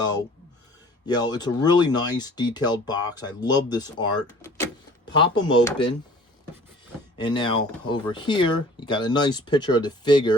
you know, it's a really nice detailed box. I love this art. Pop them open. And now over here, you got a nice picture of the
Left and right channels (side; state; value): both; normal; correlation 0.48